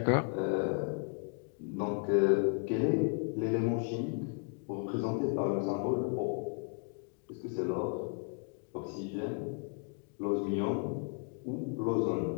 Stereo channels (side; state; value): right; quieter; 39.5 dB